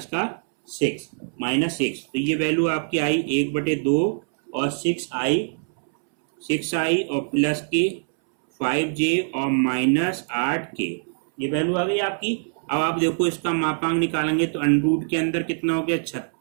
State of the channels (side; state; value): left; silent; 63 dB below the other